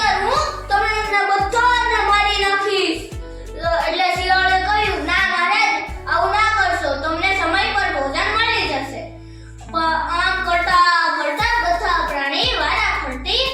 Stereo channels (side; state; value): both; identical; correlation 1.00